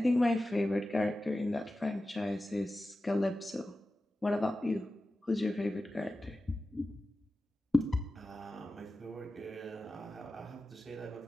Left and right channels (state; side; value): normal; both; correlation 0.94